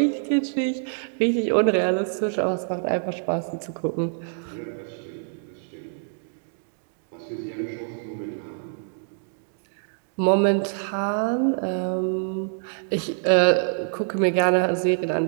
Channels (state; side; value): silent; left; digital silence